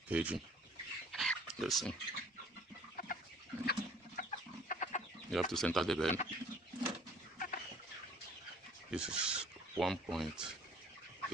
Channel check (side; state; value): both; normal; correlation 0.54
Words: caging. Let's see. You have to center the bird. This is 1.8